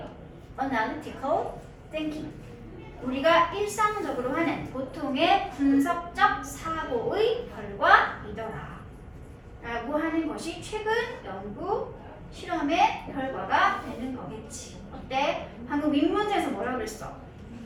analytical thinking. 우리가 일상적으로 하는 보통의 분석적 사고의 결과이더라. 라고 하는 것이 최근 연구 실험의 결과가 되는 거겠지. 어때? 방금 윗문제에서 뭐라고 그랬어?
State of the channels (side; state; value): both; identical; correlation 1.00